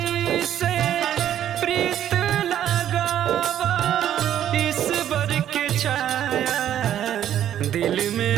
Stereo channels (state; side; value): quieter; left; 10.8 dB